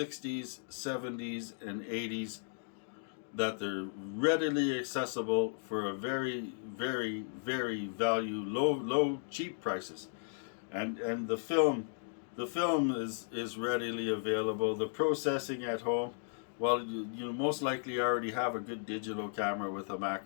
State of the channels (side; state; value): right; silent; digital silence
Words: 70s, and 80s that they're readily accessible for a very, very, very low, cheap prices, and the film is readily available. The processing at home, well, you most likely already have a good digital camera with a